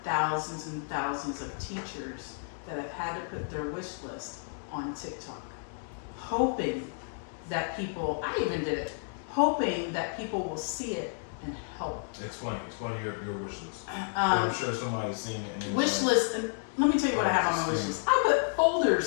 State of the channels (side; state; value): right; silent; digital silence